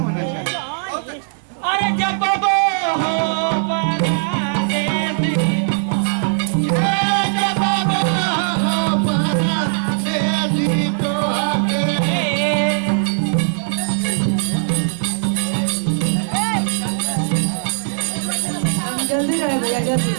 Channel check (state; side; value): silent; left; digital silence